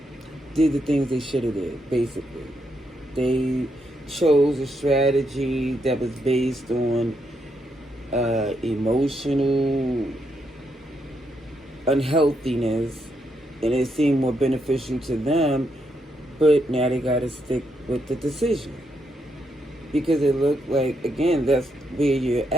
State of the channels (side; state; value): both; normal; correlation 0.79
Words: did the things they should have did, basically. They chose a strategy that was based on emotional unhealthiness, and it seemed more beneficial to them, but now they got to stick with the decision. Because it looked like, again, that's where you're